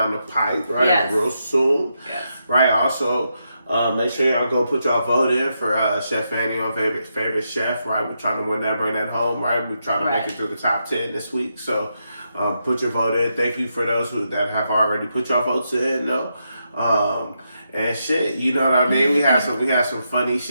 the pipe, right? Yes. Real soon. Yes. Right. Also, make sure y'all go put y'all vote in for Chef Fanny on favorite chef, right? We're trying to win that, bring that home, right? We're trying to make it through the top 10 this week, so. Put your vote in. Thank you for those that have already put your votes in, though. And shit, you know what I mean? We had some funny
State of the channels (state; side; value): inverted; both; correlation -0.83